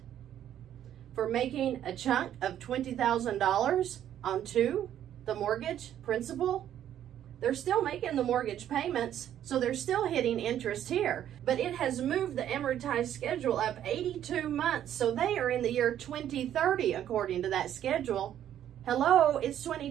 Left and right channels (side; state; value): left; quieter; 10.8 dB